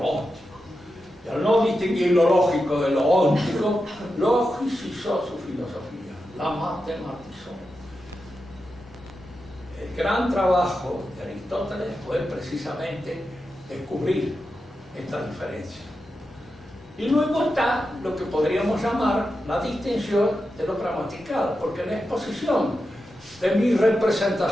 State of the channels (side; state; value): both; normal; correlation 0.89